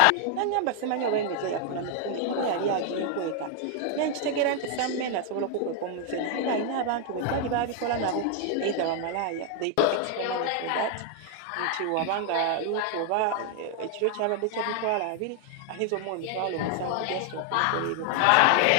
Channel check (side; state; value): both; different; correlation 0.00